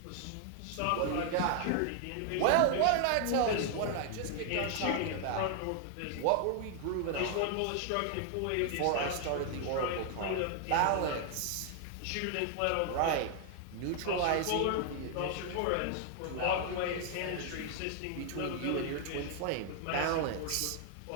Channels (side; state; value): both; different; correlation 0.00